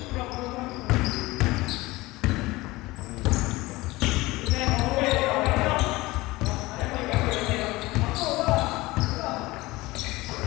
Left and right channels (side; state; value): right; quieter; 20.3 dB